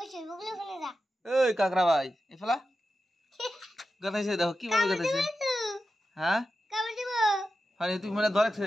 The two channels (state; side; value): normal; both; correlation 0.91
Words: ওই কাকড়া ভাই এফলা গাতাইছে দেখো কিভাবে গাতাইছে। হ্যাঁ তুমি মানে ধরেছে